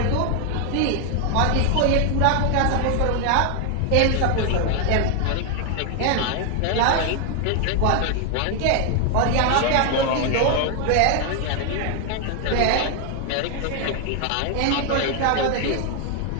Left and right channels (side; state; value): both; different; correlation 0.00